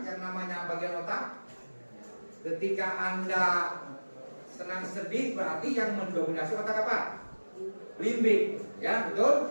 yang namanya bagian otak. Ketika Anda senang sedih berarti yang mendominasi otak apa? Limbik, ya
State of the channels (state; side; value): inverted; both; correlation -1.00